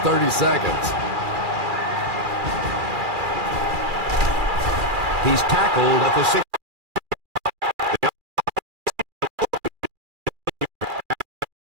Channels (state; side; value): late; left; 2.4 ms